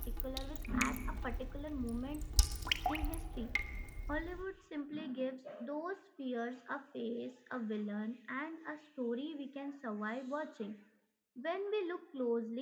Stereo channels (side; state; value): both; identical; correlation 1.00